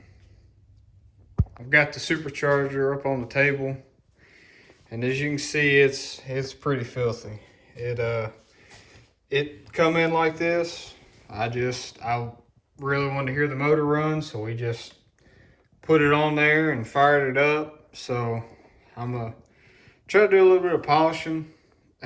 I've got the supercharger up on the table, and as you can see, it's pretty filthy. It come in like this. I really wanted to hear the motor run, so we just put it on there and fired it up. So I'm gonna try to do a little bit of polishing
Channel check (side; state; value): both; identical; correlation 1.00